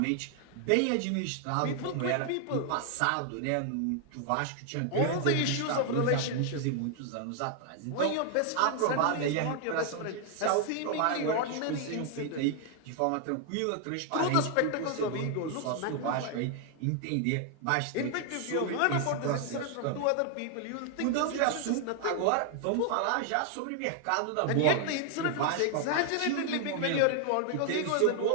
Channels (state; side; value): different; both; correlation 0.00